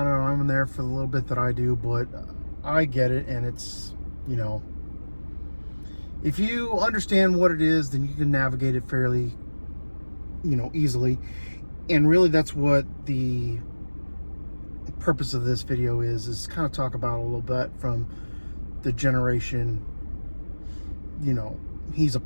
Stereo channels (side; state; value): both; inverted; correlation -1.00